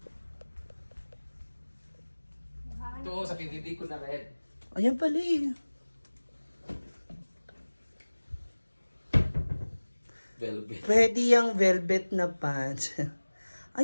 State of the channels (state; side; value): inverted; both; correlation -1.00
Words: Ito, sa PBB ko na red. Ayan pala eh. Velvet. Pwede yung velvet na pants.